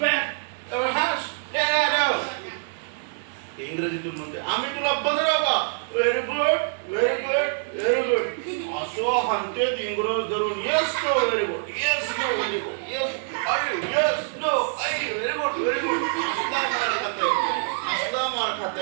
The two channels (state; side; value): silent; left; digital silence